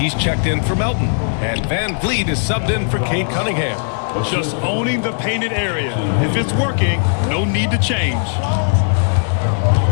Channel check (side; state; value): right; silent; digital silence